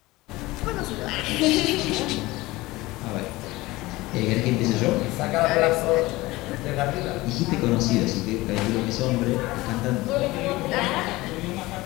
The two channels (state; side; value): quieter; right; 19.9 dB